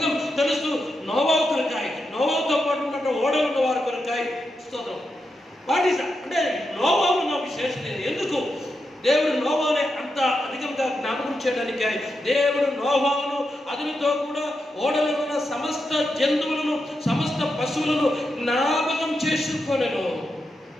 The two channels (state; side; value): normal; both; correlation 0.86